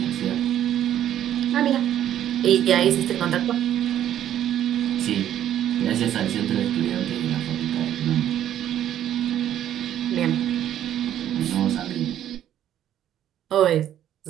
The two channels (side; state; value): left; quieter; 11.1 dB